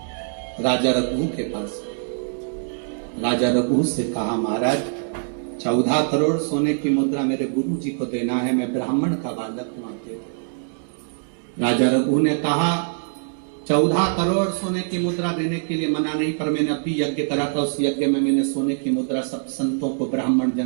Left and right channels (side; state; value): left; silent; digital silence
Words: राजा रघु के पास। राजा रघु से कहा महाराज 14 करोड़ सोने की मुद्रा मेरे गुरु जी को देना है, मैं ब्राह्मण का बालक हूं, दे दो। राजा रघु ने कहा 14 करोड़ सोने की मुद्रा देने के लिए मना नहीं, पर मैंने अभी यज्ञ करा था, उस यज्ञ में मैंने सोने की मुद्रा सब संतों को, ब्राह्मण